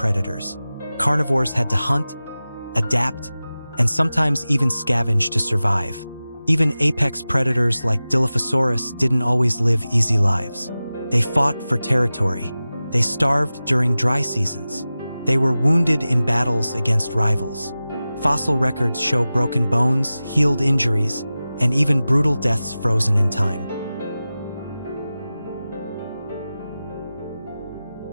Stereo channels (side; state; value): both; inverted; correlation -0.96